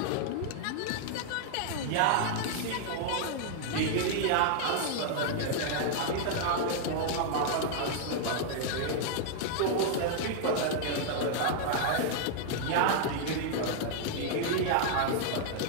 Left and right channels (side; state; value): both; different; correlation 0.00